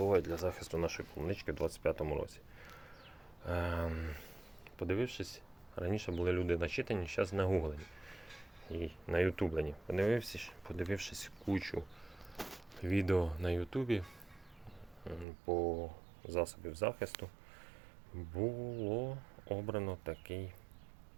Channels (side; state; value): left; drops out; at 15.2 s